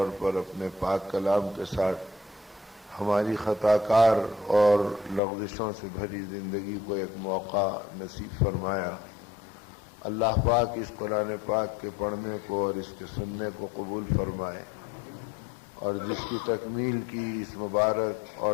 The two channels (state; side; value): drops out; right; at 5.2 s